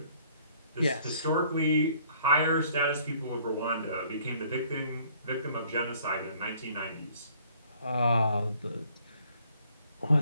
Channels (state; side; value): inverted; both; correlation -0.59